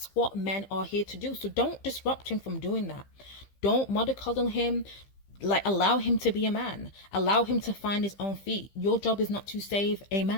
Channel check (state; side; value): late; right; 15 ms